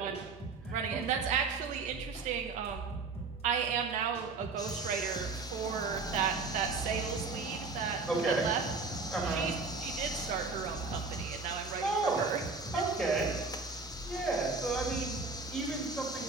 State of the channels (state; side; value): quieter; left; 4.2 dB